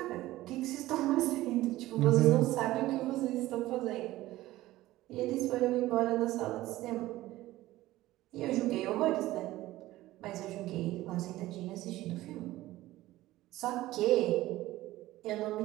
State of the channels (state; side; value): quieter; left; 16.5 dB